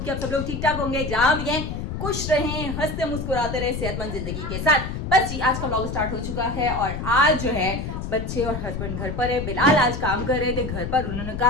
कि आप सब लोग ठीक ठाक होंगे, जहाँ भी हैं खुश रहें, हंसते मुस्कुराते रहे, सेहतमंद जिंदगी के साथ। बस जी, आज का व्लॉग स्टार्ट हो चुका है और आज जो है बच्चे और हस्बैंड घर पर है। बिलाल आज काम कर रहे थे घर पर, उन्होंने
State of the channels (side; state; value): left; noise; rumble, 5 dB below the sound